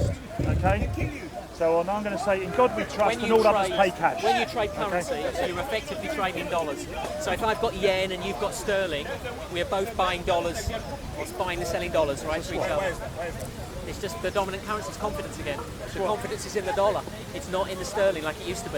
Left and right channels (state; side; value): identical; both; correlation 1.00